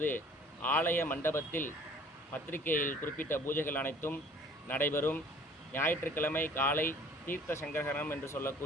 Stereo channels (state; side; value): normal; both; correlation 0.51